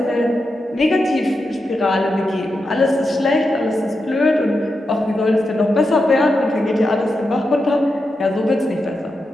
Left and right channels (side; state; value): both; normal; correlation 0.88